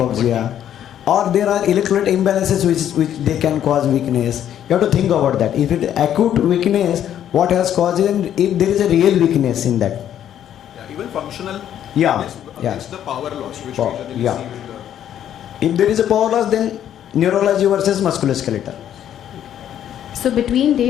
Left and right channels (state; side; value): quieter; right; 10.5 dB